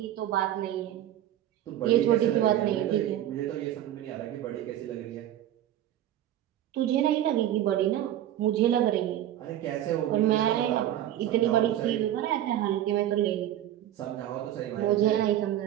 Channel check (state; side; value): quieter; left; 12.3 dB